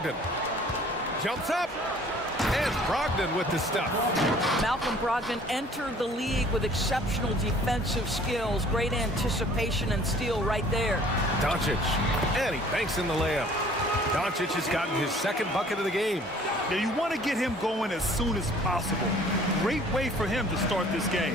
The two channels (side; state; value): both; normal; correlation 0.53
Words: Jumps up. And Brogdon with the stuff. Malcolm Brogdon entered the league with exceptional defensive skills. Great anticipation and steal right there. Doncic. And he banks in the layup. Doncic has gotten his second bucket of the game. Now you want to get him going as soon as possible. Great way for him to start this